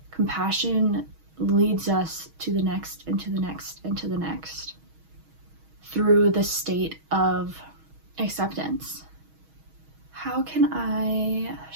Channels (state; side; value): late; left; 6.3 ms